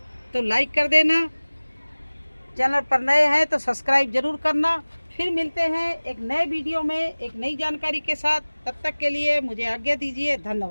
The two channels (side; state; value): both; inverted; correlation -1.00